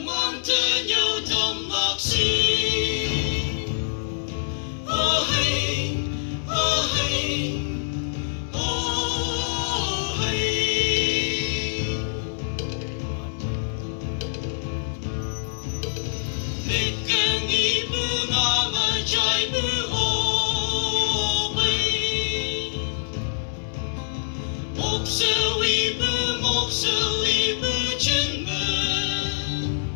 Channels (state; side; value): silent; right; digital silence